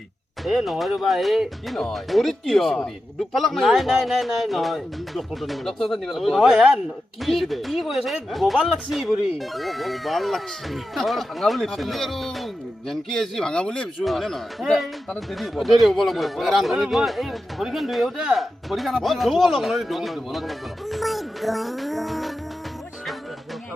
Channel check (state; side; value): normal; both; correlation 0.91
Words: এ নহয় ৰ'বা এই কি নহয় ভৰিত কি দুখ পালাক নাই নাই নাই নাই নহয় ডক্টৰ নিব নহয় কি কি কৈ আছে গোবাল লাগছি ভৰি ভাল লাগছে ভাঙা বুলি আপুনি আৰু জেনকি এচি ভাঙা বুলি ভাবিছোঁ হয়নে নহয় তাতে দেৰি হ'ব দেৰি হ'ব লাগিব ৰান্ধনিটো এই ভৰিখন ধুই আহোঁতে পৰীক্ষা ধুব অলপ নহয়